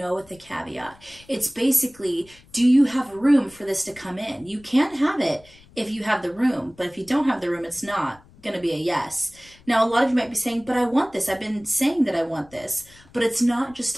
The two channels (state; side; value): noise; left; rumble, 26 dB below the sound